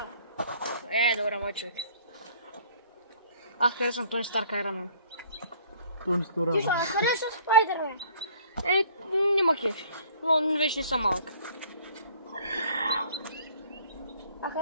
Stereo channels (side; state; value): both; inverted; correlation -0.55